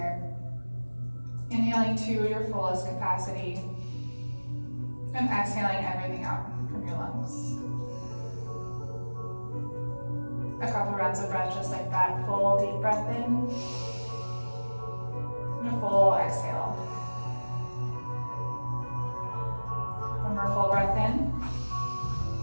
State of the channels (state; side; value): inverted; both; correlation -1.00